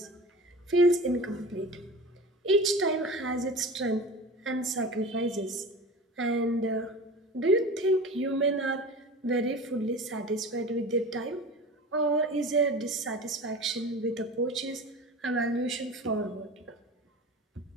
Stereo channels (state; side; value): normal; both; correlation 0.35